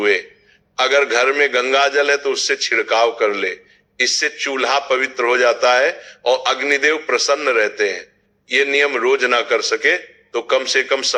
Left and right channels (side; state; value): both; identical; correlation 1.00